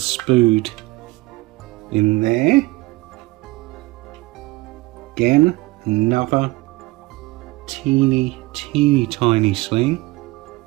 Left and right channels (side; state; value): left; quieter; 21.5 dB